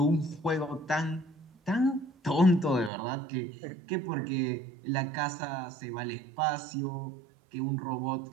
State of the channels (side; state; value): left; drops out; at 2.9 s